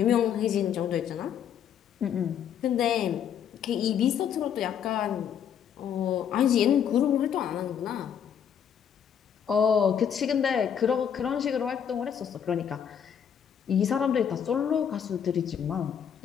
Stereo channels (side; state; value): right; quieter; 8.4 dB